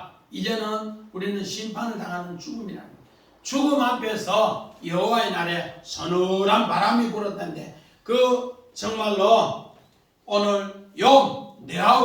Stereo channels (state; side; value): identical; both; correlation 1.00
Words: 이제는 우리는 심판을 당하는 죽음이라는 거예요. 죽음 앞에서 여호와의 날에 서늘한 바람이 불었다는데 그 정말로 오늘 욥